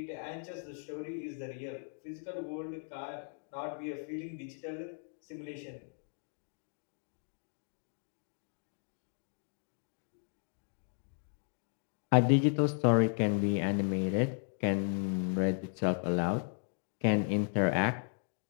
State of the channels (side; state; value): right; silent; 54 dB below the other